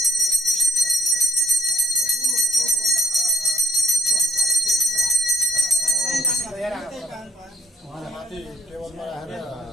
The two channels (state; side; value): normal; both; correlation 0.61